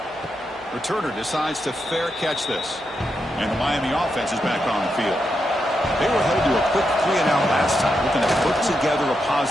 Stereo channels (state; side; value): normal; both; correlation 0.84